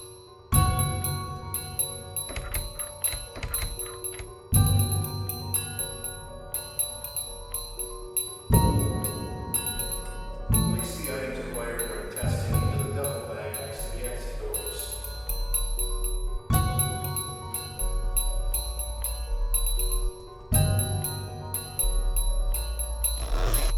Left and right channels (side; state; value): both; identical; correlation 1.00